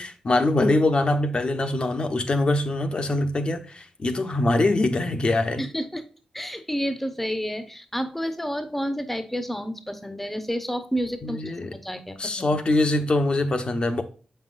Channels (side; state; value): both; normal; correlation 0.86